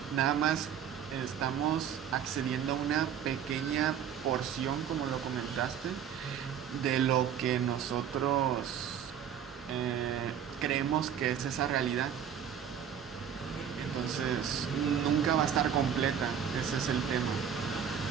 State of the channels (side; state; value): left; quieter; 8.6 dB